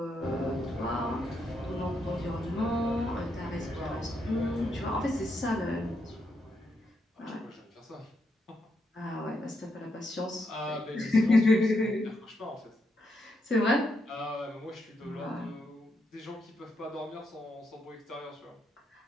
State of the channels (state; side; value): normal; both; correlation 0.80